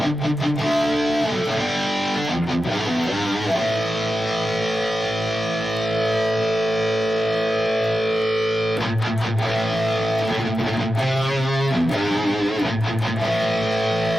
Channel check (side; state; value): right; noise; hum, 29 dB below the sound